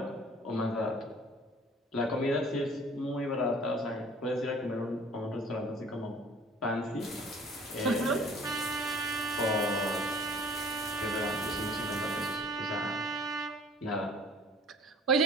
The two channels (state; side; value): normal; both; correlation 0.50